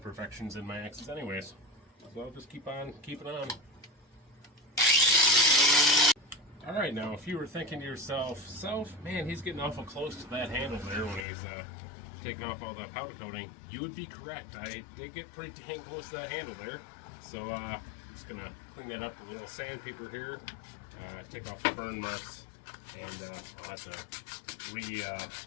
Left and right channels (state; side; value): drops out; right; at 11.2 s